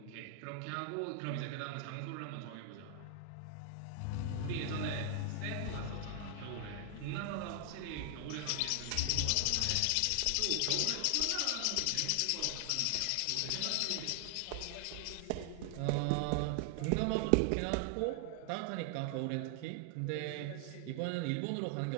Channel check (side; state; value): both; different; correlation 0.00